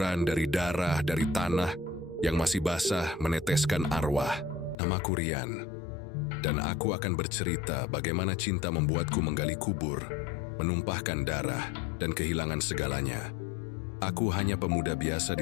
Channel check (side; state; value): right; drops out; at 4.8 s